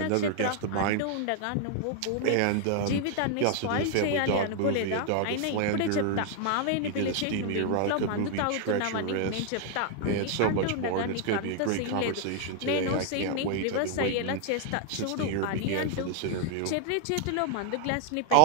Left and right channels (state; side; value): different; both; correlation 0.00